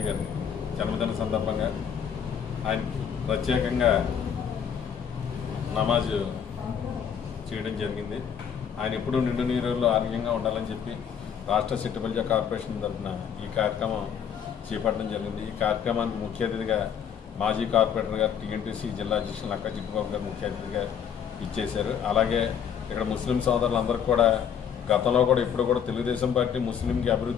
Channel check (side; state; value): right; quieter; 8.0 dB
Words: గారి జన్మదిన సందర్భంగా ఆయనకి ప్రత్యేకంగా నమాజ్ చేయడం జరిగింది. ఆయన ఎప్పుడూ నిండు నీరులో ఆరోగ్యంగా ఉండాలని చెప్పి రాష్ట్ర సిట్టిబల్జా కార్పొరేషన్ తరఫున ఈ కార్యక్రమం చేపట్టడం జరిగింది. ఈ కార్యక్రమానికి ముఖ్య అతిథిగా మాజీ కార్పొరేటర్ గారు టీఎన్టీసీ జిల్లా అధ్యక్షులు నక్కా చిట్టుబాబు గారు ముఖ్య అతిథిగా ఇచ్చేశారు. అలాగే ఇక్కడ ముస్లిం సోదరులందరికీ కూడా గతంలో కూడా ఇప్పుడు కూడా తెలుగుదేశం పార్టీ ముస్లింకి